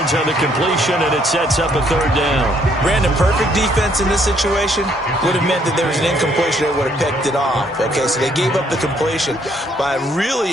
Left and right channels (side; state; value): both; normal; correlation 0.67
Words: on the completion, and it sets up a 3rd down. Brandon, perfect defense in this situation would have meant that there was an incompletion. They would have picked it off. Okay, so they gave up the completion. But I really